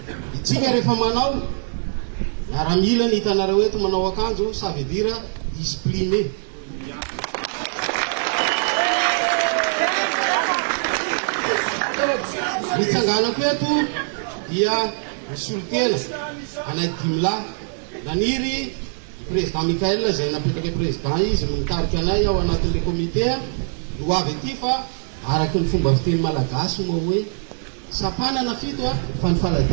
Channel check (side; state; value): left; silent; digital silence